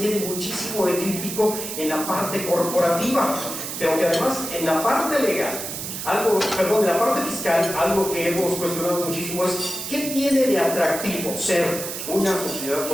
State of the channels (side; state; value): right; noise; hiss, 6 dB below the sound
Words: muchísimo de crítico en la parte corporativa, pero que además en la parte legal, en la parte fiscal, algo que hemos cuestionado muchísimo es ¿qué tiene de atractivo ser una sociedad